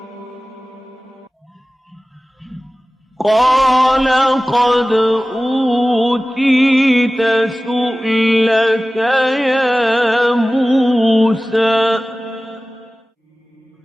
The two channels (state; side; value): normal; both; correlation 0.97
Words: قال قد أوتيت سؤلك يا موسى